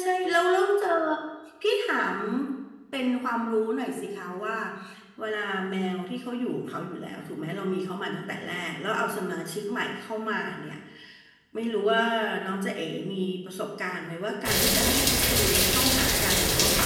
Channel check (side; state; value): both; identical; correlation 1.00